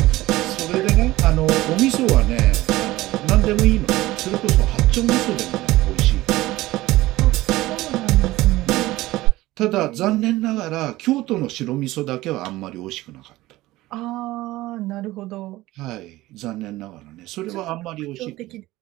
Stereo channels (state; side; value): quieter; left; 17.7 dB